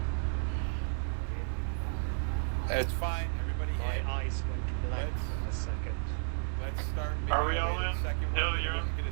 That's fine. Everybody in. Let's start. Are we all in? Hill, you're in?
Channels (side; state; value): left; silent; 56 dB below the other